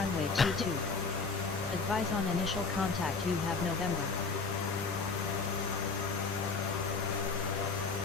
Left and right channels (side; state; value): right; quieter; 4.5 dB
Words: 22. Advise on initial contact you have November.